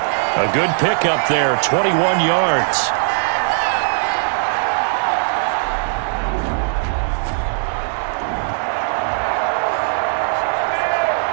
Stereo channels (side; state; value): left; silent; digital silence